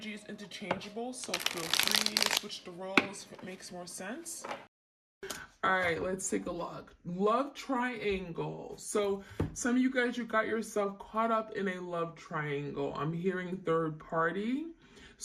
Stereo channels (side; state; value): both; identical; correlation 1.00